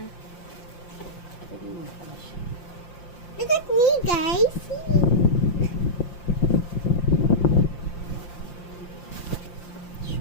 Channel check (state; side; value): late; right; 5.7 ms